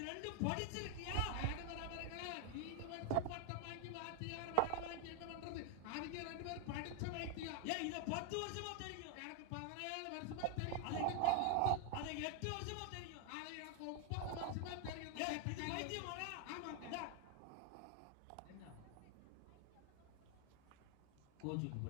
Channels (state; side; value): different; both; correlation 0.01